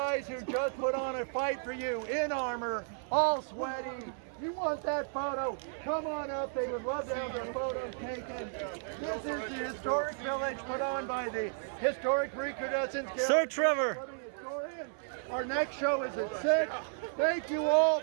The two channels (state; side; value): silent; left; 55 dB below the other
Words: who just put on a fight for you in armor, all sweaty, you want that photo, come on up. They would love to have their photos taken. This is the historic village put on by the Historic Recrudescence Guild. Sir Trevor. Our next show is at 6. Thank you all